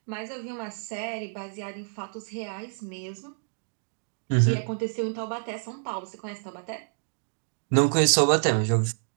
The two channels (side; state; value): left; silent; digital silence